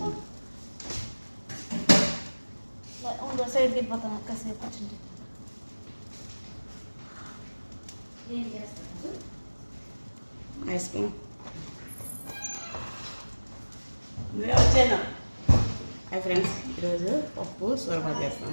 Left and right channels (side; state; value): both; inverted; correlation -1.00